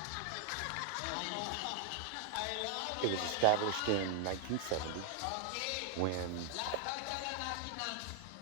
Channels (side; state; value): both; different; correlation 0.00